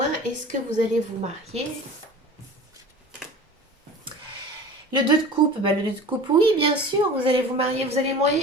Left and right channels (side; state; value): both; normal; correlation 0.38